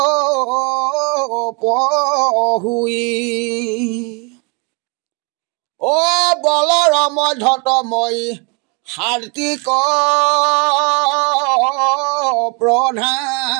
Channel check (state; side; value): quieter; left; 33.0 dB